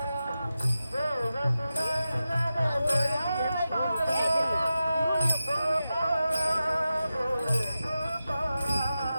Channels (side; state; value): both; inverted; correlation -0.91